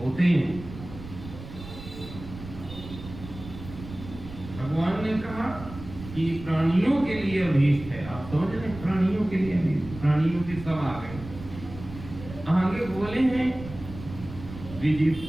हैं। भगवान ने कहा कि प्राणियों के लिए अभीष्ट है, आप समझ रहे, प्राणियों के लिए अभीष्ट, प्राणियों के सब आ गए। आगे बोले हैं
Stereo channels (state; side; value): noise; right; rumble, 13 dB below the sound